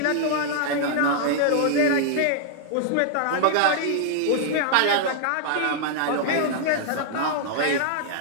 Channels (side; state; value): both; different; correlation -0.01